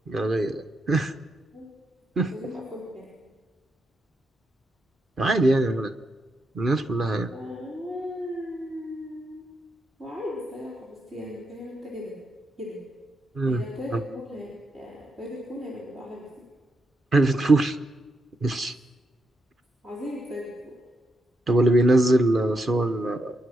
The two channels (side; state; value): both; normal; correlation 0.82